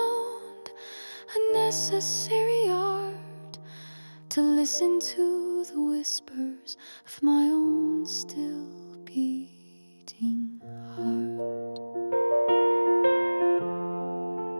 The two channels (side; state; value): both; inverted; correlation -1.00